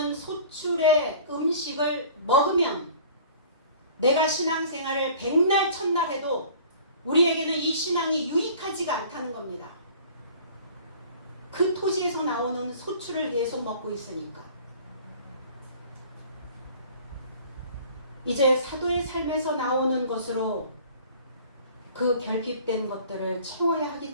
소출의 음식을 먹으면 내가 신앙생활을 백날 천날 해도 우리에게는 이 신앙이 유익하지가 않다는 겁니다. 그 토지에서 나오는 소출을 계속 먹고 있으니까. 이제 사도의 삶에서 나오는 것으로 그 결핍된 것들을 채워야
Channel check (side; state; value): both; inverted; correlation -0.48